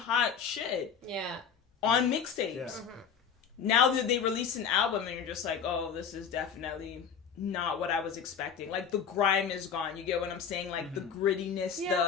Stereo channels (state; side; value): quieter; right; 7.0 dB